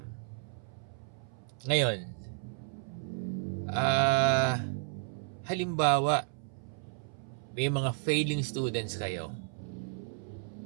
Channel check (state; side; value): silent; left; 56 dB below the other